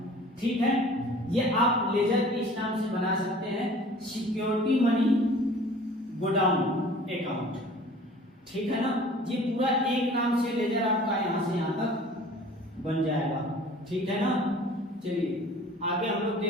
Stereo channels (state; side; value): normal; both; correlation 0.47